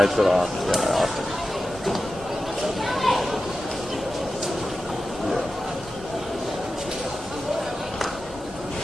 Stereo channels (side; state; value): both; normal; correlation 0.93